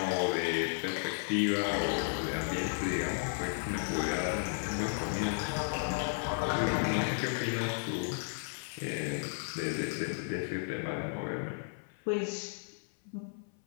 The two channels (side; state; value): right; silent; 55 dB below the other